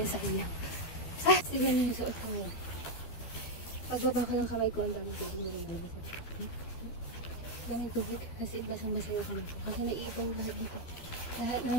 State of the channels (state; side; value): late; right; 12 ms